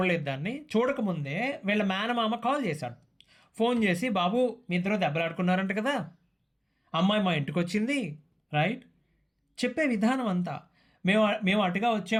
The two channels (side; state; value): both; identical; correlation 1.00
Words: దాన్ని. చూడకముందే వీళ్ళ మేనమామ కాల్ చేశాడు, ఫోన్ చేసి, బాబు మీ ఇద్దరు దెబ్బలాడుకున్నారంట కదా, అమ్మాయి మా ఇంటికి వచ్చింది. రైట్. చెప్పే విధానం అంతా, మేము అటుగా